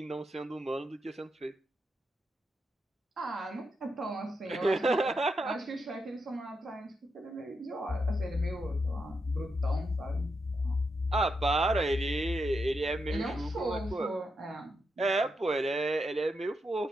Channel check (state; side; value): normal; both; correlation 0.84